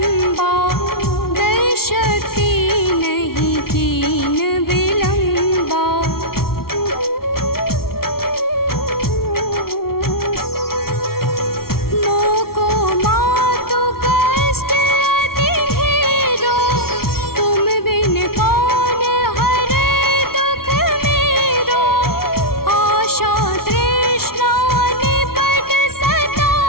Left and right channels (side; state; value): right; late; 0.94 ms